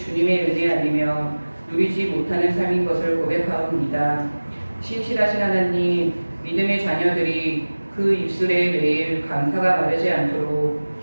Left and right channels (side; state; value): both; inverted; correlation -1.00